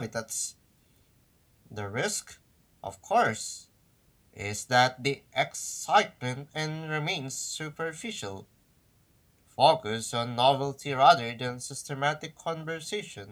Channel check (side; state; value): both; identical; correlation 1.00